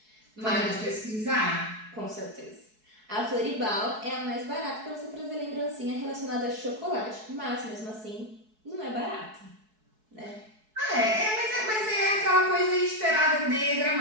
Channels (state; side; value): late; left; 4.7 ms